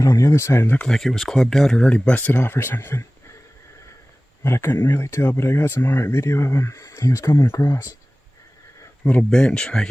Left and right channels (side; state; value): both; normal; correlation 0.98